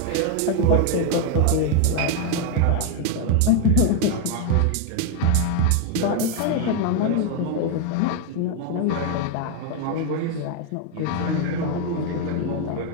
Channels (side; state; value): both; different; correlation 0.01